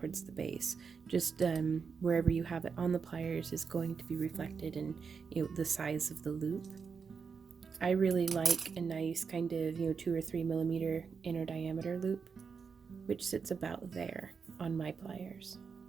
the base. Just wherever you have it on the pliers is going to be reflected in the size of the loop. I really like a nice kind of 2 or 3 millimeter inner diameter loop, which sits about there on my pliers.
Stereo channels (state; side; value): quieter; left; 5.7 dB